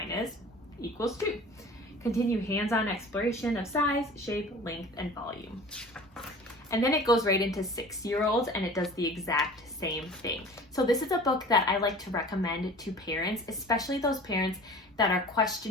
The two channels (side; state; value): both; normal; correlation 0.42